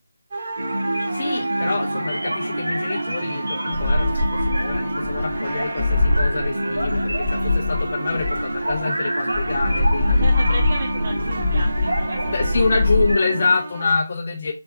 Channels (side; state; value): both; inverted; correlation -0.91